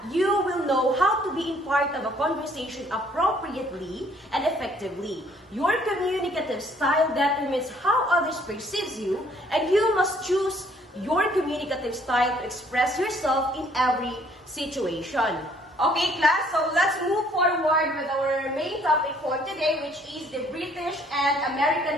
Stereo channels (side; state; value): both; normal; correlation 0.62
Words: you will know how to be in part of a conversation appropriately and effectively. Your communicative style determines how others perceive you, and you must choose your communicative style to express yourself in every situation. Okay, class, so let's move forward with our main topic for today, which is the British and